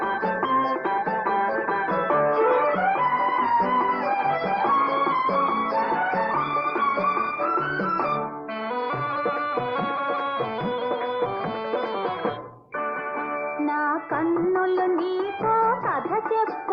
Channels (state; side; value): identical; both; correlation 1.00